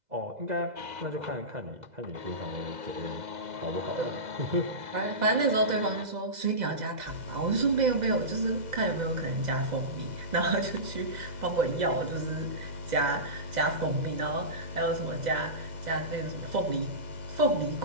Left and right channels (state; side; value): late; left; 2.0 ms